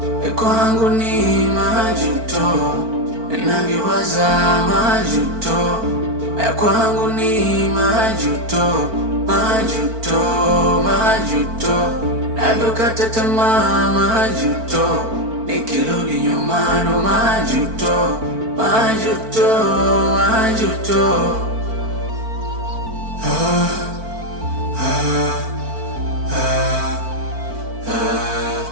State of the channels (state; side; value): late; left; 4.5 ms